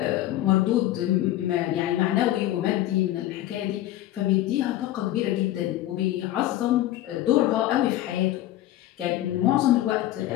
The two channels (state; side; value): quieter; right; 14.5 dB